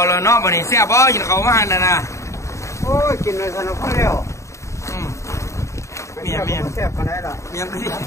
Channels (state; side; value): late; right; 0.14 ms